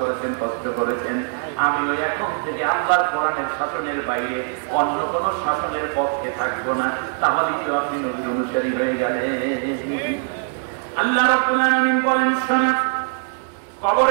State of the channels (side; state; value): left; silent; digital silence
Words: কষ্ট করেছেন। আমিও এখন থেকে আল্লাহর কোরআনের শাসনের বাইরে অন্য কোন শাসনের পক্ষে থাকবো না। তাহলে কি আপনি নবীর অনুসারী হয়ে গেলেন? আল্লাহ রাব্বুল আলামিন বলেন, শোনা,